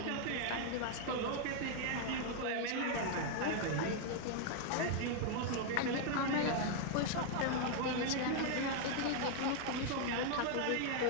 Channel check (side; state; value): both; different; correlation 0.00